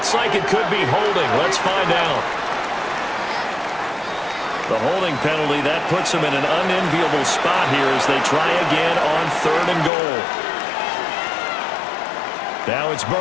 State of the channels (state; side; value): drops out; right; at 9.9 s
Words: like it could be holding. Let's find out. The holding penalty, that puts them in an unenviable spot here as they try again on 3rd and goal. Now it's